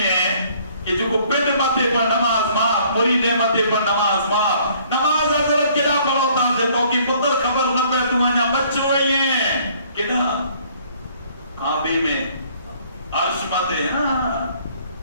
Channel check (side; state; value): both; inverted; correlation -0.60